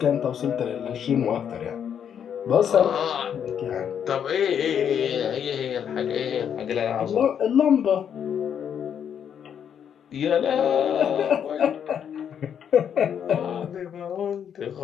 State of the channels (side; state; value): right; quieter; 8.4 dB